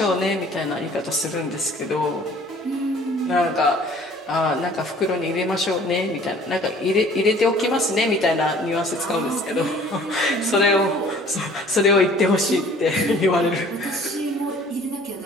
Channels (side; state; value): both; normal; correlation 0.52